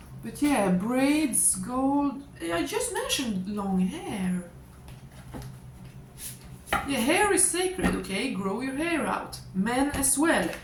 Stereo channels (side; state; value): both; identical; correlation 1.00